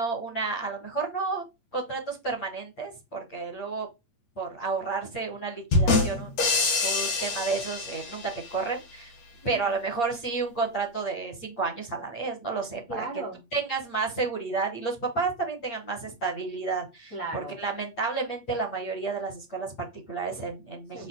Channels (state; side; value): late; right; 8.5 ms